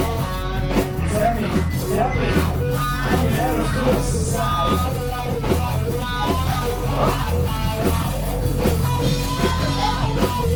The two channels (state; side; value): identical; both; correlation 1.00